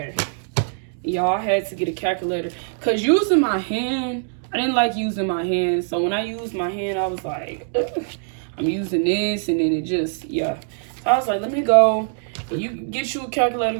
Y'all had to get a calculator. Because using my hand, I didn't like using my hand. So when I used my hand, I was like, ugh, I'm using this. And then it just, yeah. So I was like, let me go. You get you a calculator,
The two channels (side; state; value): left; silent; digital silence